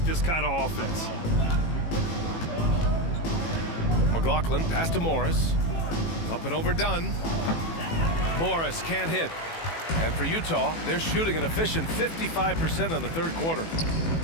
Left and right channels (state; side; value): late; right; 18 ms